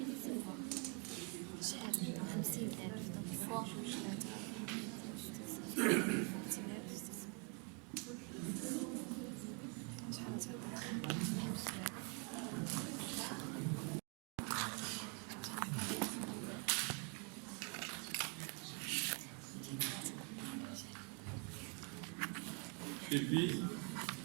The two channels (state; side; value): quieter; left; 36.0 dB